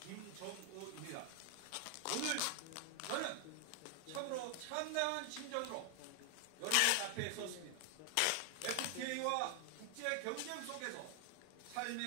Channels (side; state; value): both; different; correlation 0.00